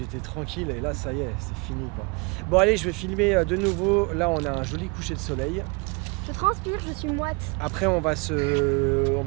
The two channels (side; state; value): left; quieter; 30.7 dB